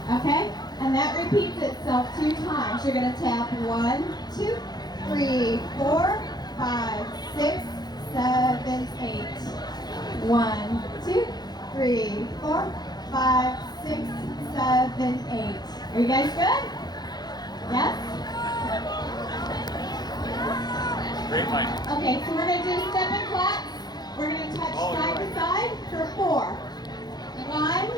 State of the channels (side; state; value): right; late; 0.20 ms